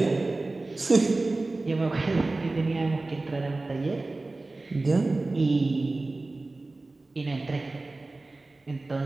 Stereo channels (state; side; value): quieter; left; 3.2 dB